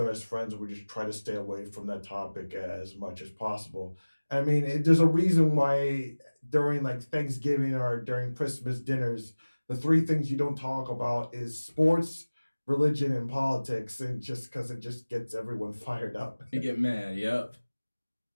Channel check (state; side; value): inverted; both; correlation -1.00